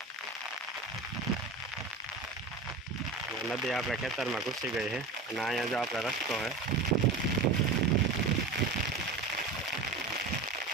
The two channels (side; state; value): left; quieter; 3.8 dB